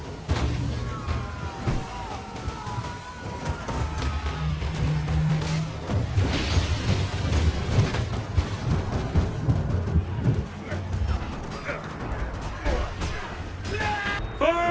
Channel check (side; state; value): both; identical; correlation 1.00